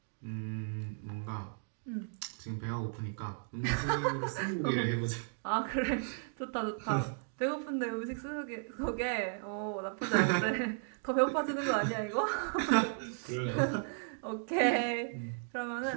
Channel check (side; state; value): left; silent; digital silence